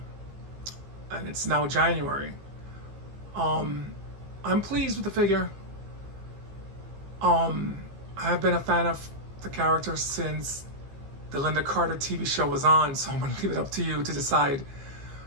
and it's now January. I'm pleased with the figure. I have been a fan of the character since the Linda Carter TV show was on, so I'm going to leave it up to you to decide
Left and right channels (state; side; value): late; left; 15 ms